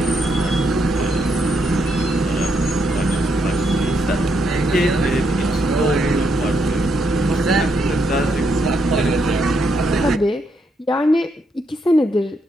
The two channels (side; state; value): both; normal; correlation 0.77